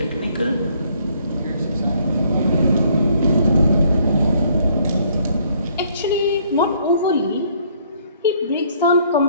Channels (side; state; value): both; inverted; correlation -0.64